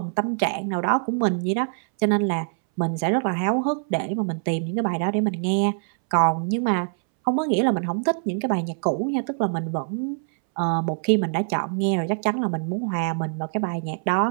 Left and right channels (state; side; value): silent; left; 62 dB below the other